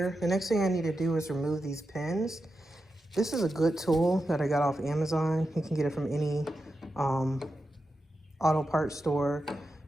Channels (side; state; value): both; normal; correlation 0.89